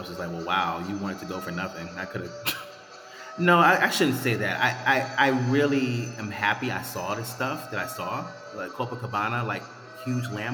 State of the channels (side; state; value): both; identical; correlation 1.00